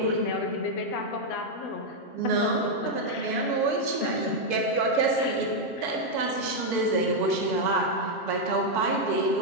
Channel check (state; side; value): late; right; 7.1 ms